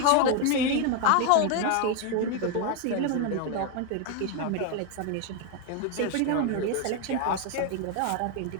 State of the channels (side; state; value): both; different; correlation 0.01